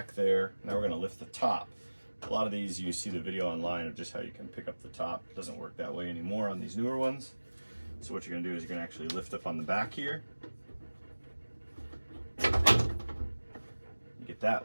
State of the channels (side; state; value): both; inverted; correlation -1.00